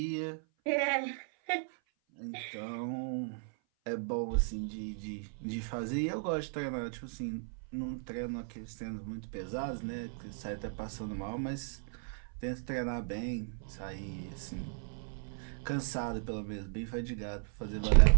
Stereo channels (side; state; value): left; silent; 54 dB below the other